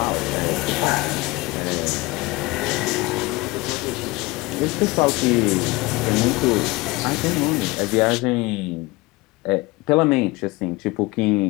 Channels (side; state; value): right; quieter; 22.1 dB